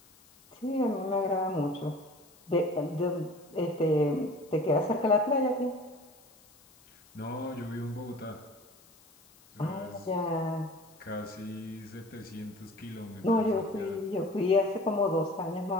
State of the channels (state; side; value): noise; left; hiss, 27 dB below the sound